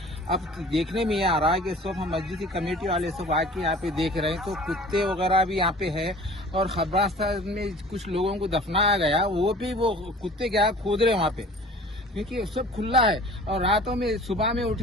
अब देखने में ये आ रहा है कि सब हम मस्जिद की कमेटी वाले सब आके यहाँ पे देख रहे हैं तो कुत्ते वगैरह भी यहाँ पे है और कब्रिस्तान में कुछ लोगों को दफनाया गया, वो भी वो कुत्ते क्या खोद रहे वहाँ पे, क्योंकि सब खुला है। और रातों में सुबह में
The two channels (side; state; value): both; normal; correlation 0.45